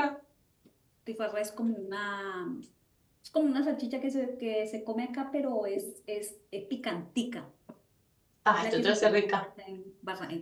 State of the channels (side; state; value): both; identical; correlation 1.00